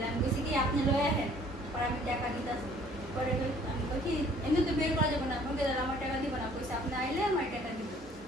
আমি কইছি কি আপনি লয়ে আহেন পরে আমি টাকা দিতাছি পরে আমি কই কি এমনি তো বের করা যাবে না বলতে আমার টাকা দিব না কইছে আপনি আইলে আমার টাকা দিব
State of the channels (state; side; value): normal; both; correlation 0.57